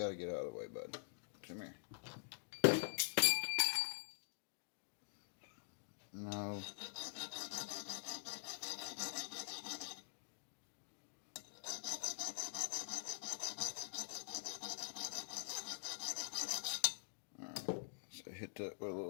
get out of the way, bud. Come here. No. Alright, so hit that with a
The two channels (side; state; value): right; silent; digital silence